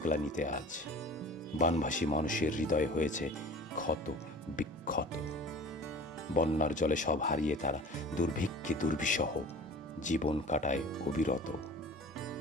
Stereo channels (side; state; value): both; normal; correlation 0.42